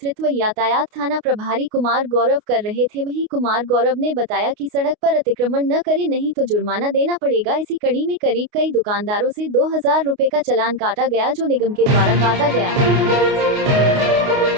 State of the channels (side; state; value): left; late; 29 ms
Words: यातायात थाना प्रभारी कुमार गौरव कर रहे थे। वहीं कुमार गौरव ने बताया कि सड़क पर अतिक्रमण न करें नहीं तो जुर्माना देना पड़ेगा। इसी कड़ी में करीब कई दुकानदारों से 2,000 रुपए का चालान काटा गया, जो निगम के द्वारा काटा गया।